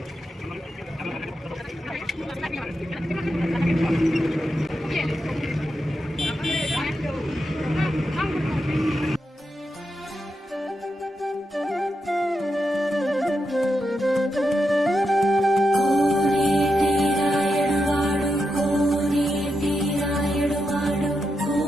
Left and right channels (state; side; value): normal; both; correlation 0.86